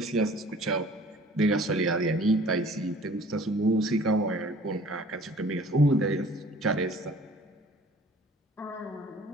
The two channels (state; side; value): normal; both; correlation 0.51